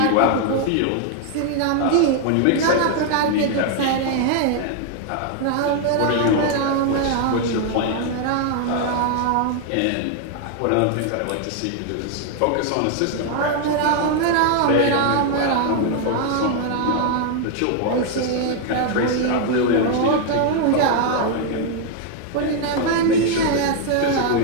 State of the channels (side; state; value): both; different; correlation 0.00